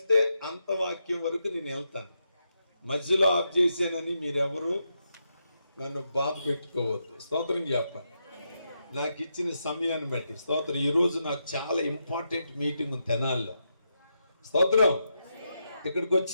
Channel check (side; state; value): both; inverted; correlation -0.84